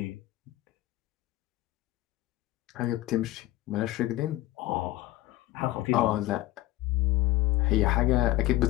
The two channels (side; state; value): right; quieter; 16.5 dB